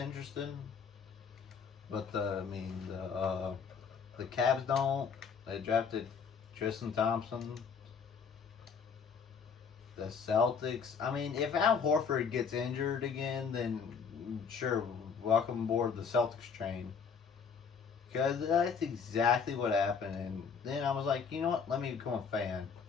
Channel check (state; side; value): quieter; right; 6.1 dB